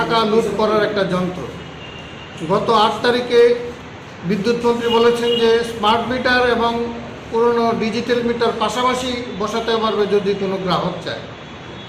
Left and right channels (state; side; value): identical; both; correlation 1.00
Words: লুট করার একটা যন্ত্র। গত 8 তারিখে বিদ্যুৎ মন্ত্রী বলেছেন যে স্মার্ট মিটার এবং পুরনো ডিজিটাল মিটার পাশাপাশি বসাতে পারবে যদি কোনো গ্রাহক চায়।